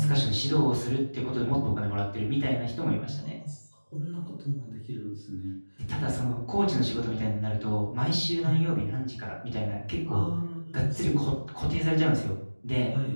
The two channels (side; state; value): both; inverted; correlation -1.00